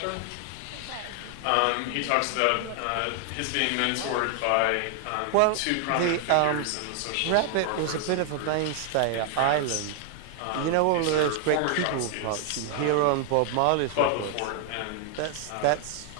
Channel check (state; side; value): different; both; correlation 0.00